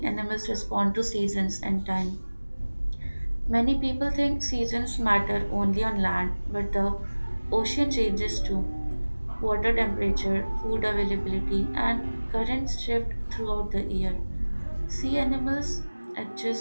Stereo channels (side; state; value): both; inverted; correlation -1.00